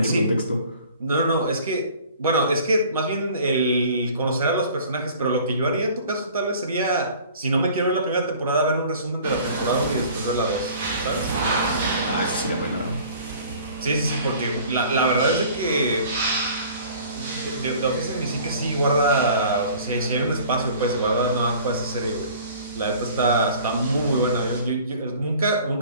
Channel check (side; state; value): both; inverted; correlation -0.48